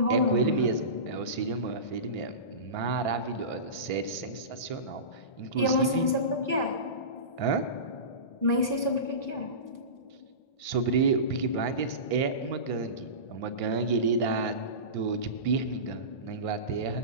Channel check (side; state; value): right; late; 1.6 ms